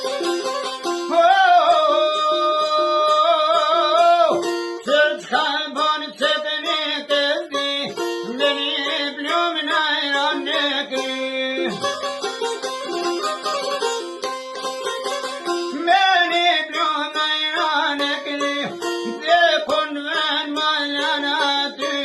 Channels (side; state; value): both; identical; correlation 1.00